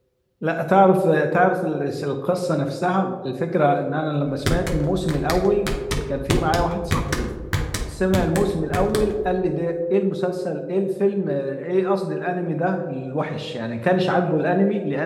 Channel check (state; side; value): identical; both; correlation 1.00